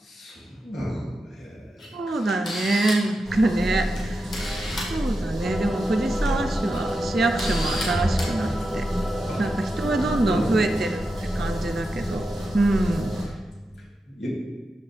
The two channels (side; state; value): both; normal; correlation 0.89